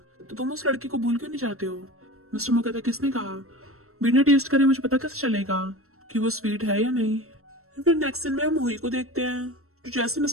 तो तुम उस लड़की को भूल क्यों नहीं जाते हो। मिस्टर मो कहता है किसने कहा, बिना टेस्ट करे मुझे पता कैसे चलेगा कि वो स्वीट है या नहीं। फिर नेक्स्ट दिन में हम हुई को देखते हैं जो जैसे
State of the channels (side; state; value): left; late; 0.63 ms